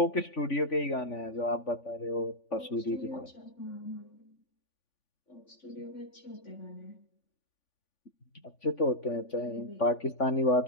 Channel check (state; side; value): late; right; 3.5 ms